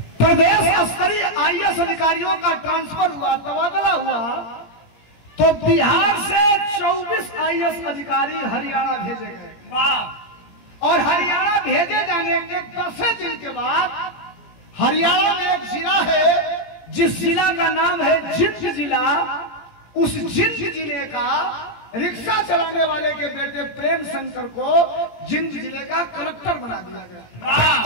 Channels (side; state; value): right; late; 17 ms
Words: प्रदेश स्तरीय आईएएस अधिकारियों का ट्रांसफर हुआ, तबादला हुआ, तो बिहार से 24 आईएएस अधिकारी हरियाणा भेजे गए। और हरियाणा भेजे जाने के 10 दिन के बाद हरियाणा में एक जिला है जिस जिला का नाम है जिंद जिला। उस जिंद जिले का रिक्शा चलाने वाले के बेटे प्रेम शंकर को जिंद जिले का कलेक्टर बना दिया गया।